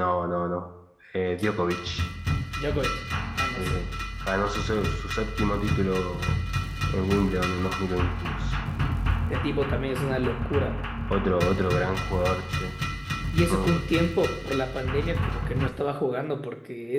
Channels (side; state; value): both; identical; correlation 1.00